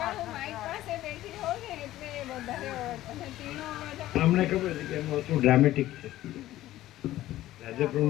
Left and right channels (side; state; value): right; quieter; 14.9 dB